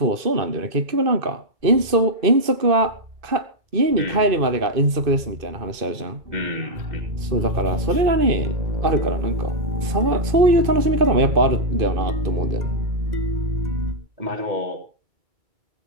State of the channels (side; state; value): left; late; 2.5 ms